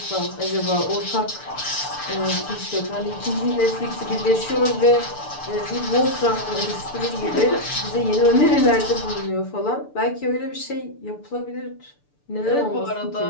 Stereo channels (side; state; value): right; late; 6.8 ms